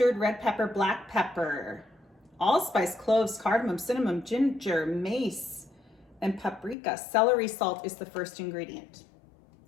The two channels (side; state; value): right; drops out; at 6.8 s